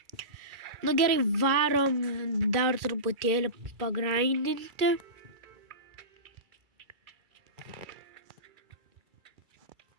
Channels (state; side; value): late; left; 2.3 ms